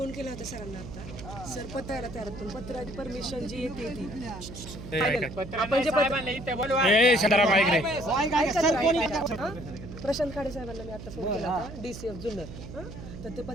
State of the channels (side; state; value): right; noise; hum, 12 dB below the sound